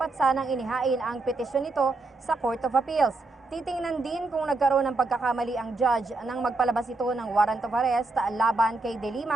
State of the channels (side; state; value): left; quieter; 3.2 dB